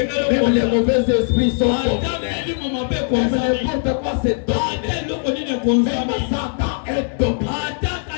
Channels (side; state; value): right; silent; 59 dB below the other